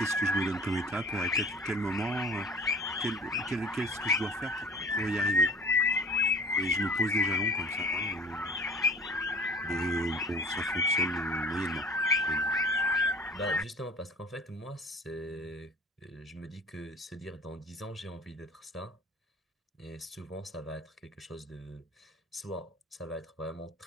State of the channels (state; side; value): normal; both; correlation 0.45